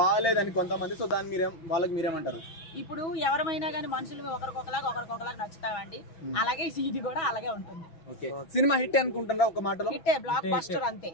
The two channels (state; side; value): late; right; 6.1 ms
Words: కొంతమంది, సో దాన్ని వాళ్ళకి మీరేమంటారు? ఇప్పుడు ఎవరమైనా కానీ మనుషులు ఒకరికొకలాగా నచ్చుతామండి, అలాగే ఇది కూడా అలాగే ఉంటుంది. సినిమా హిట్ అనుకుంటున్నా ఒక మాటలో? హిట్టే, బ్లాక్ బస్టర్ అంతే.